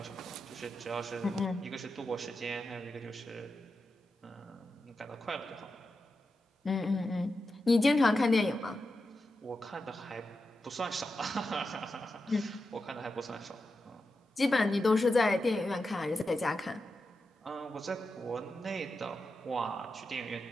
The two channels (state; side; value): normal; both; correlation 0.89